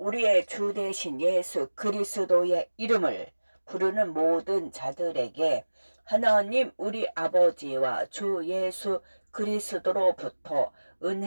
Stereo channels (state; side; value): inverted; both; correlation -1.00